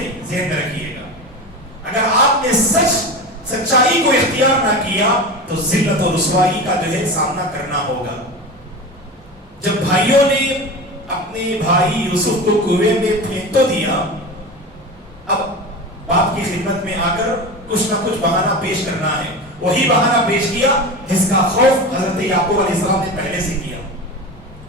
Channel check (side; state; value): both; normal; correlation 0.27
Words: ذہن میں رکھیے گا، اگر آپ نے سچائی کو اختیار نہ کیا تو ذلت اور رسوائی کا جو ہے سامنا کرنا ہوگا. جب بھائیوں نے اپنے بھائی یوسف کو کنویں میں پھینک تو دیا، اب باپ کی خدمت میں آ کر کچھ نہ کچھ بہانہ پیش کرنا ہے. وہی بہانہ پیش کیا جس کا خوف حضرت یعقوب علیہ السلام نے پہلے سے کیا.